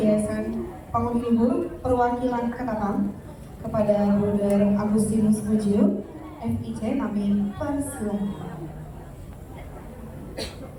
Bangun Luhur Perwakilan Ketapang kepada Bruder Agustinus Mujio, FIC. Kami persilahkan.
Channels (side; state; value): both; identical; correlation 1.00